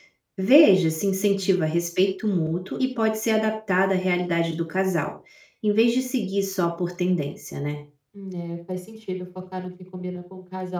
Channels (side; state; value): both; identical; correlation 1.00